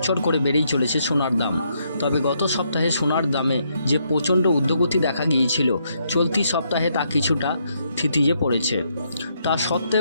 করে বেড়েই চলেছে সোনার দাম। তবে গত সপ্তাহে সোনার দামে যে প্রচণ্ড ঊর্ধ্বগতি দেখা গিয়েছিল, চলতি সপ্তাহে তা কিছুটা থিতিয়ে পড়েছে। তা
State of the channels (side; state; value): both; inverted; correlation -0.75